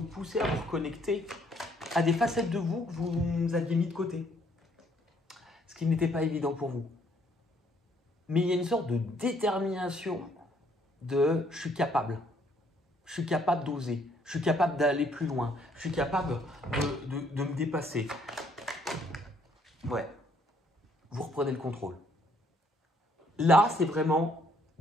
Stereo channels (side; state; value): both; normal; correlation 0.66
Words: poussé à vous reconnecter à des facettes de vous que vous aviez mis de côté. Ce qui n'était pas évident pour vous. Mais il y a une sorte de détermination de « je suis capable ». Je suis capable d'oser, je suis capable d'aller plus loin, je suis capable de me dépasser. Ouais, vous reprenez le contrôle. Là, c'est vraiment,